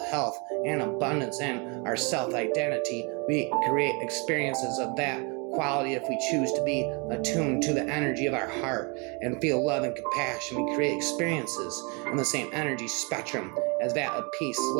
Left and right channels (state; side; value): quieter; left; 32.0 dB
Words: health and abundance in our self-identity, we create experiences of that quality. If we choose to be attuned to the energy of our heart and feel love and compassion, we create experiences in the same energy spectrum as that of peace,